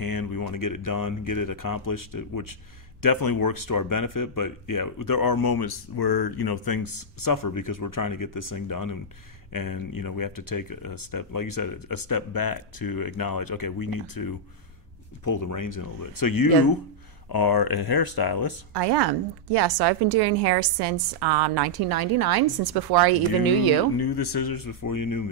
we want to get it done, get it accomplished, which definitely works to our benefit. But yeah, there are moments where things suffer because we're trying to get this thing done, and we have to take a step, like you said, a step back to acknowledge, okay, we need to pull the reins in a little bit. So you are a hairstylist. I am. Yeah, so I've been doing hair since 1999, since before I even knew you. Knew the scissors before you knew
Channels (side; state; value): both; normal; correlation -0.06